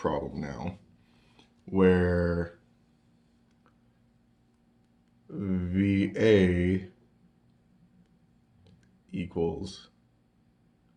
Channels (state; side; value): identical; both; correlation 1.00